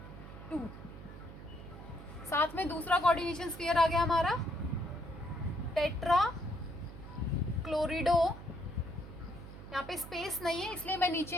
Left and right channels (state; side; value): noise; right; hum, 14 dB below the sound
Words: 2, साथ में दूसरा कोऑर्डिनेशन स्फीयर आ गया हमारा टेट्रा क्लोरिडो। यहाँ पे स्पेस नहीं है इसलिए मैं